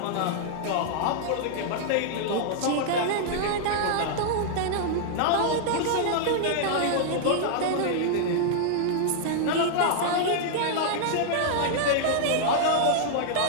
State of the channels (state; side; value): different; both; correlation -0.01